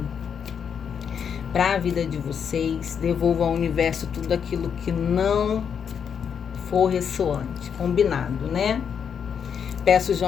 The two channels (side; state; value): right; quieter; 7.4 dB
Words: para a vida de vocês. Devolva ao universo tudo aquilo que não for ressoante. Combinado, né? Peço